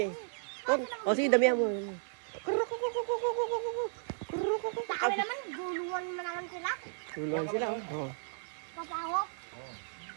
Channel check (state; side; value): silent; left; digital silence